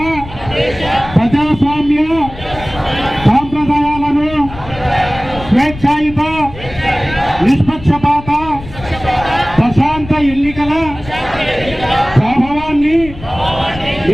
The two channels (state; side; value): noise; left; rumble, 14 dB below the sound